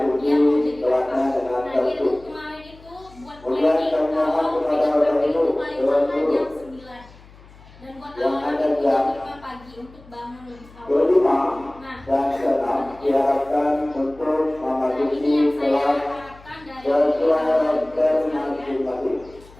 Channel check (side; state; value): left; noise; hum, 23 dB below the sound